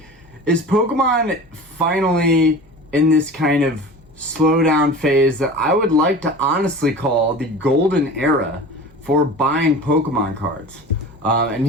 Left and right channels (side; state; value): both; normal; correlation 0.36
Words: is Pokemon finally in this kind of slowdown phase that I would like to honestly call the golden era for buying Pokemon cards. And